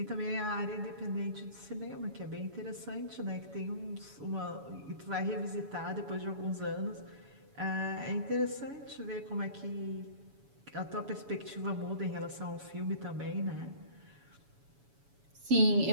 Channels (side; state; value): left; late; 7.1 ms